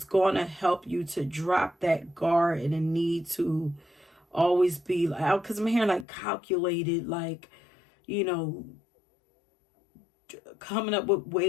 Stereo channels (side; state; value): right; drops out; at 6.1 s